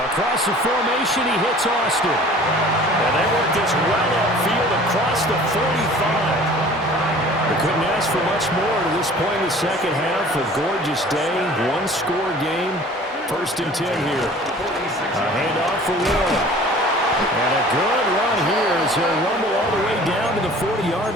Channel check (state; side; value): normal; both; correlation 0.47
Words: the formation, he hits Austin. And they work this well upfield across the 45. They couldn't ask for much more to this point in the second half. A gorgeous day, one-score game. 1st and 10 here. A handoff for Warren. And a good run here as he'll rumble all the way down to the